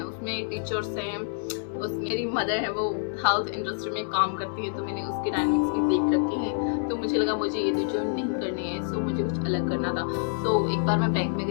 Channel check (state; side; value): silent; right; digital silence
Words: उसमें टीचर्स हैं, उसमें मेरी मदर है वो हेल्थ इंडस्ट्री में काम करती है तो मैंने उसके डायनामिक्स भी देख रखे हैं. तो मुझे लगा मुझे ये तो जॉब नहीं करनी है. सो मुझे कुछ अलग करना था. सो एक बार मैं बैंक में